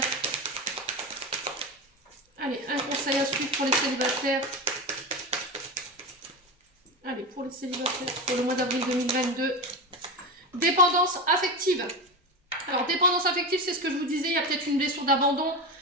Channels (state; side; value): normal; both; correlation 0.21